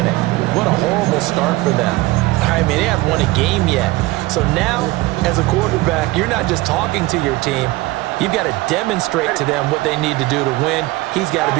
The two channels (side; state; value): left; quieter; 20.0 dB